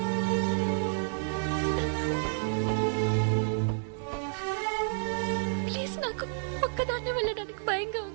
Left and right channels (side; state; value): left; silent; digital silence